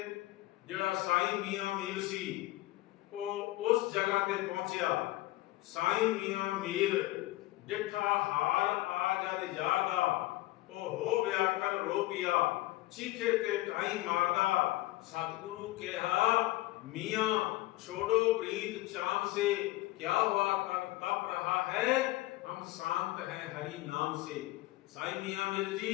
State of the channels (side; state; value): right; quieter; 18.2 dB